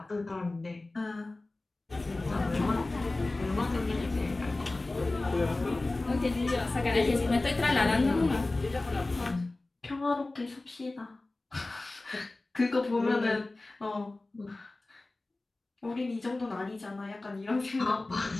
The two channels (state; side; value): quieter; right; 3.0 dB